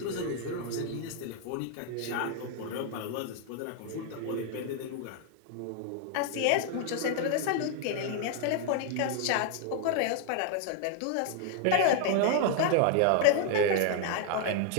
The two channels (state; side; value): different; both; correlation 0.00